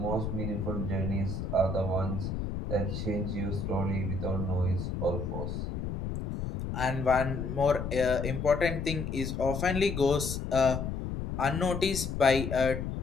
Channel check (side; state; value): left; noise; rumble, 4 dB below the sound